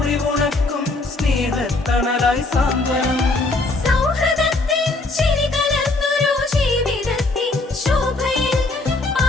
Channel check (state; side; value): quieter; right; 3.2 dB